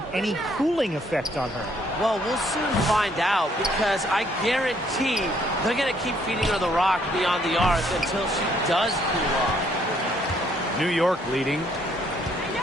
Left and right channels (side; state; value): both; normal; correlation 0.67